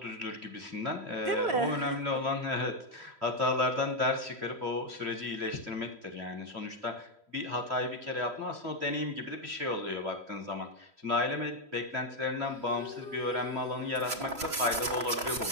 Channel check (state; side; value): late; left; 3.1 ms